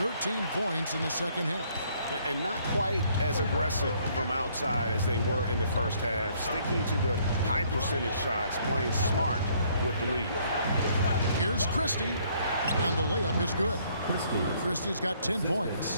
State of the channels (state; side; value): inverted; both; correlation -0.65